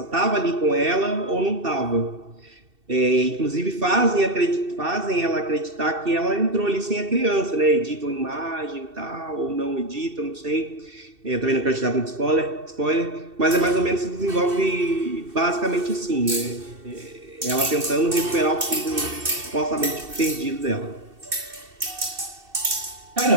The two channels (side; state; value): left; late; 2.7 ms